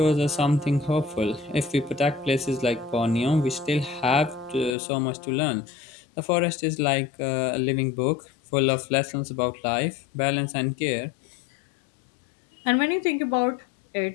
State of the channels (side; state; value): right; drops out; at 4.8 s